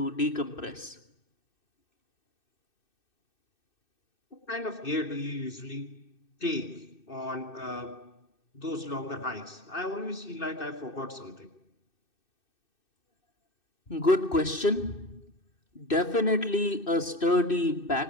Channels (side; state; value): right; late; 2.6 ms